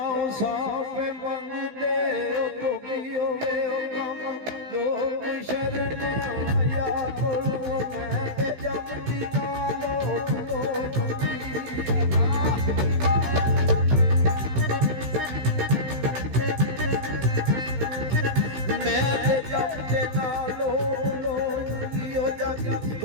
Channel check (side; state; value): left; late; 16 ms